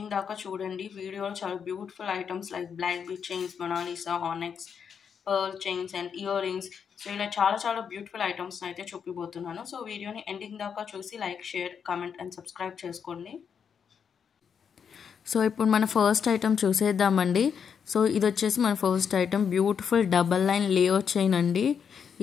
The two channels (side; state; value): right; quieter; 7.1 dB